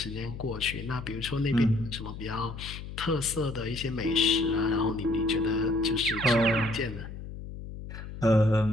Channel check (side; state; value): left; noise; hum, 10 dB below the sound